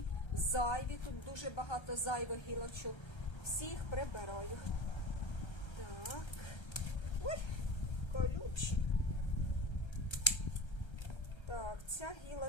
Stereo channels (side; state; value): right; late; 1.3 ms